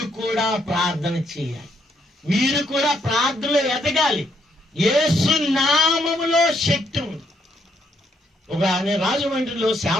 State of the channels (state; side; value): normal; both; correlation 0.73